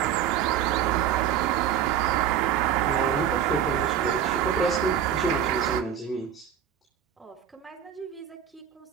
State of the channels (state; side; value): quieter; left; 9.1 dB